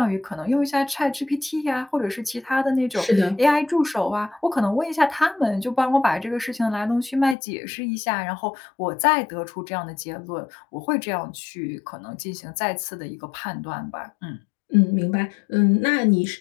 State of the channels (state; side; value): drops out; right; at 7.4 s